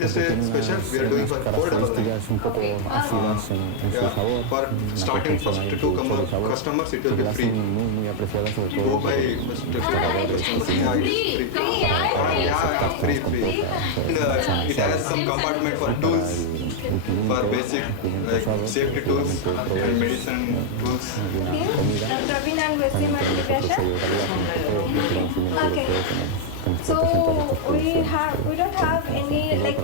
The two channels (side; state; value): both; different; correlation 0.00